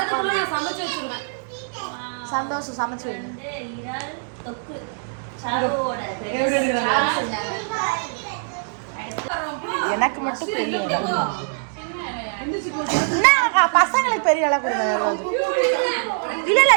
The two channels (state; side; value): silent; left; digital silence